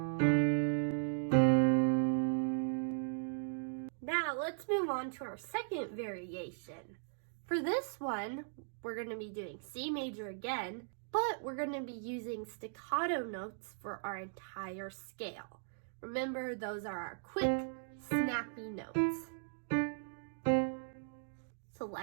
Now let's move on to our second variation. For this one, we're going to be doing C major again, but we're going to be using staccato notes for our entire scale. Remember, those are our quick, snappy notes. So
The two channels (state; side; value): silent; left; digital silence